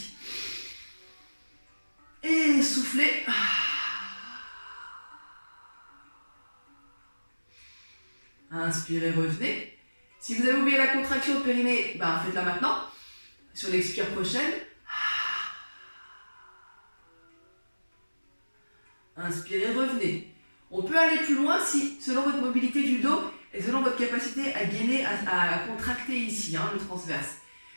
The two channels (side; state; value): both; inverted; correlation -1.00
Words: Et soufflez. Inspirez, revenez. Si vous avez oublié la contraction au périnée, faites-la maintenant. Sur l'expire prochaine. Inspirez, revenez. On peut aller plus loin si, selon votre mobilité du dos et selon votre capacité à gainer, à contracter ici, le transverse.